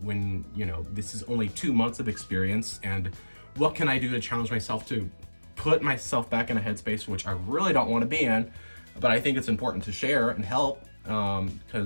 when, you know, this is only 2 months of experience, and what can I do to challenge myself to put myself back in a headspace which I really don't want to be in, but I think it's important to share and help,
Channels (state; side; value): inverted; both; correlation -1.00